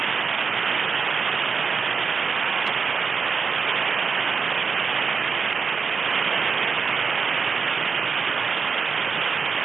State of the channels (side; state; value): left; quieter; 5.5 dB